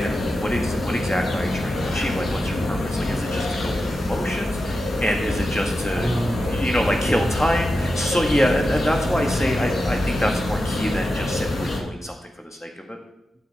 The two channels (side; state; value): both; normal; correlation 0.90